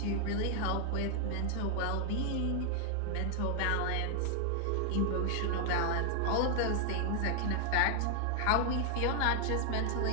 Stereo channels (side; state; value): both; different; correlation 0.00